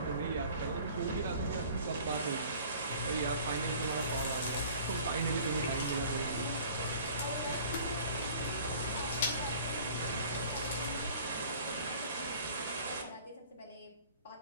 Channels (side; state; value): both; inverted; correlation -0.49